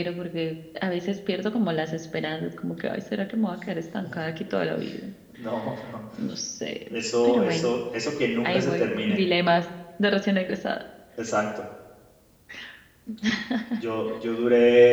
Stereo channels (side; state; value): both; identical; correlation 1.00